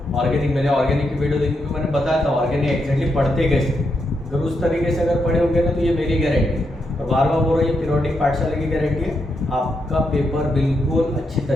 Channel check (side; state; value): both; normal; correlation 0.81